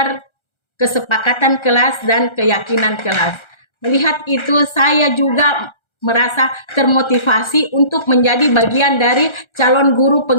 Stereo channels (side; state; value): right; late; 1.3 ms